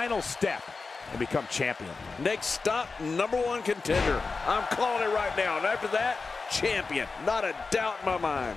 step and become champion? Next stop, #1 contender. I'm calling it right now. And after that, champion. Not a doubt in my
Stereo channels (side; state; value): right; quieter; 4.3 dB